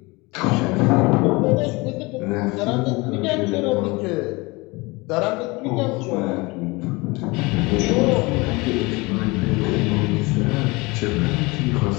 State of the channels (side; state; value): right; quieter; 24.6 dB